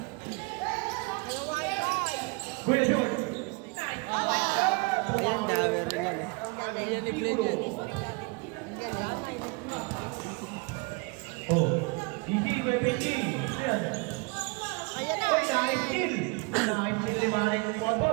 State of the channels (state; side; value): quieter; left; 30.6 dB